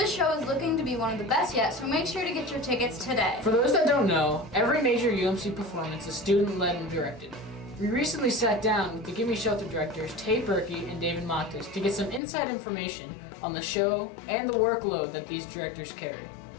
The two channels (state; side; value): drops out; right; at 12.2 s